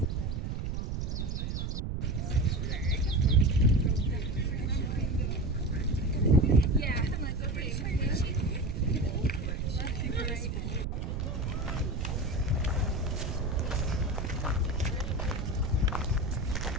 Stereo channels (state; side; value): noise; right; rumble, 2 dB below the sound